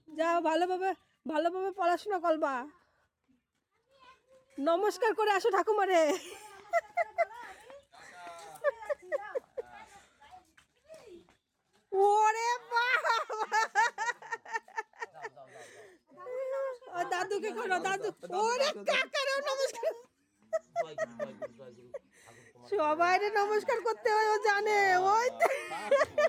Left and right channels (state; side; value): identical; both; correlation 1.00